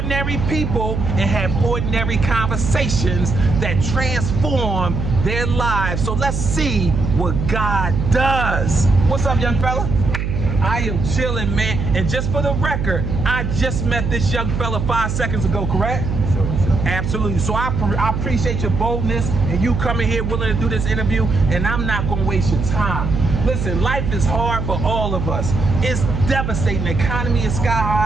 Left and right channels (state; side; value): noise; right; hum, 3 dB below the sound